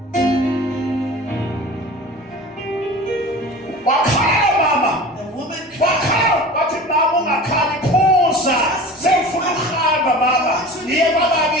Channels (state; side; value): normal; both; correlation 0.38